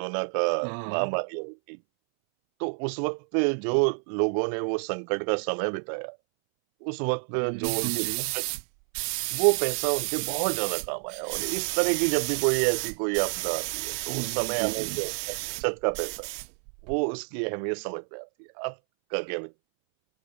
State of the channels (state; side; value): silent; left; 59 dB below the other